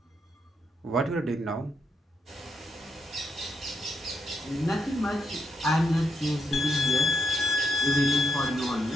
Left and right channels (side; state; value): both; normal; correlation 0.79